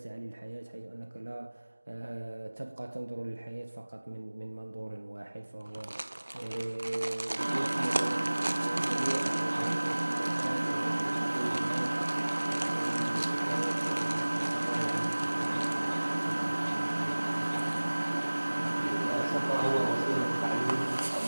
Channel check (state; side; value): inverted; both; correlation -1.00